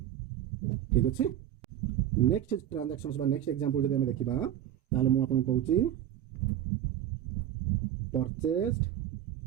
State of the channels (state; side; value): quieter; left; 11.2 dB